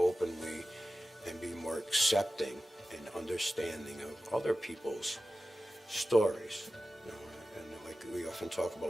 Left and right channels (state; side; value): normal; both; correlation 0.94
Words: and be more accepting and understanding of other people's stories. And like we often talk